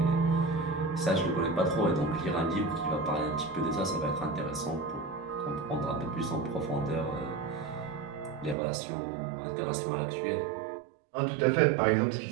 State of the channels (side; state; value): left; drops out; at 8.6 s